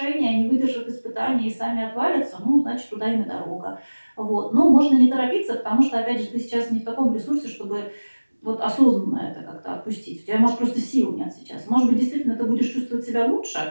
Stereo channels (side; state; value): both; inverted; correlation -1.00